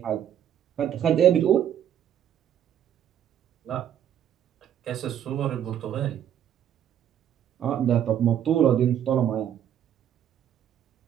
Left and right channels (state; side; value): quieter; left; 10.0 dB